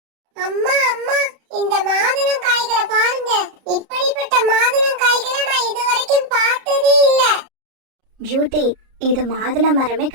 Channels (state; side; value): late; left; 32 ms